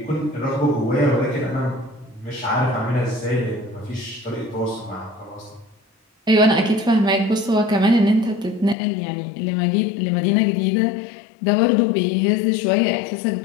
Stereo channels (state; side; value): drops out; right; at 8.8 s